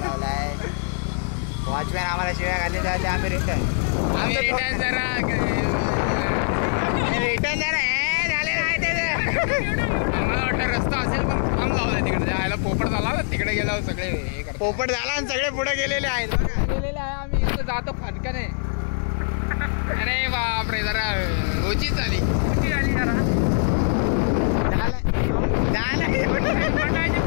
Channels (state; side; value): silent; right; 63 dB below the other